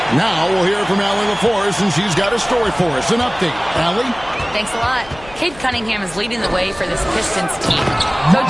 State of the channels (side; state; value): left; noise; hum, 20 dB below the sound